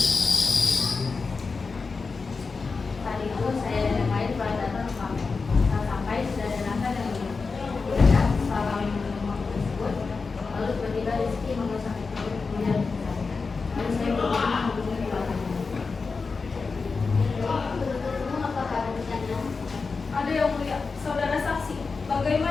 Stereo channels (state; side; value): quieter; right; 4.5 dB